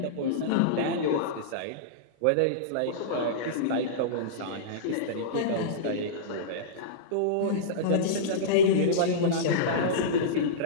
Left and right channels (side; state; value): both; different; correlation -0.04